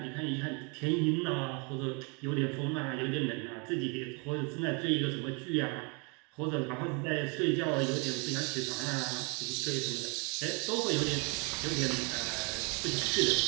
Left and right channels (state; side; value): quieter; left; 33.2 dB